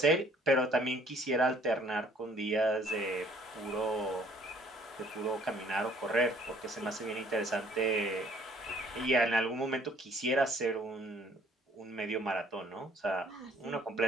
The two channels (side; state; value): both; normal; correlation 0.59